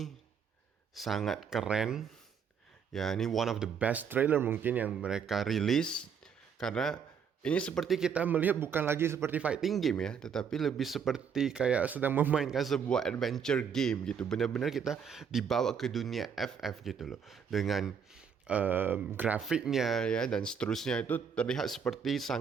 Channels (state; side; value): quieter; left; 7.0 dB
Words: sangat keren. Ya, ini one of the best trailer mungkin yang mereka rilis karena ini seperti kita melihat bukan lagi seperti fighting game ya, tetapi lebih seperti kayak sedang memainkan sebuah adventure game gitu. Benar-benar kita dibawa ke dunia FF gitu loh. Dengan grafiknya ya dan seterusnya itu terlihat seperti